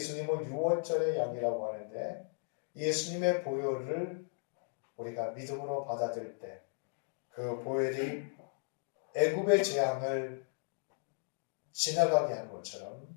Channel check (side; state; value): right; silent; digital silence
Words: 6월절의 양이라고 하는데 예수님의 보혈을 우리가 믿음으로 받아들일 때 그 보혈이 애굽의 재앙을 지나가게 한 것처럼